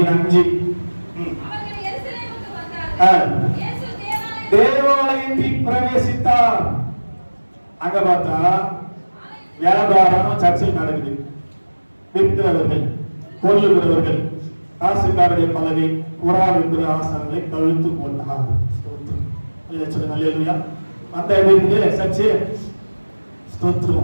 தேவாலயத்தில் பிரவேசித்தார். அங்க பார்த்தா வியாபாரம் சர்ச்சில் நடக்குது. விற்கிறவர்கள், கொல்லுகிறவர்கள், காசுக்காரருடைய பலகை, புறா விற்கிற ஆசனங்களை கழுத்து போட்டார். சொல்லுங்க, அல்லேலூயா. அந்த எப்படி சர்ச்சு?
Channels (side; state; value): both; inverted; correlation -1.00